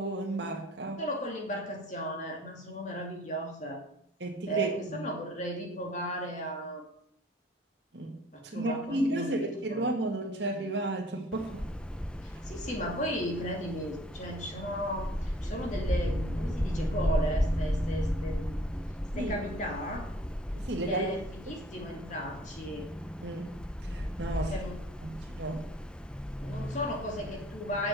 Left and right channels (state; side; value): normal; both; correlation 0.53